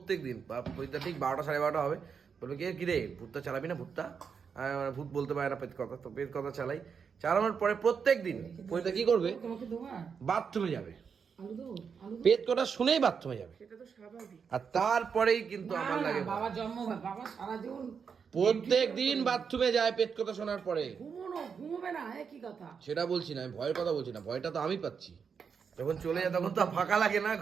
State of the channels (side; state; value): left; quieter; 6.3 dB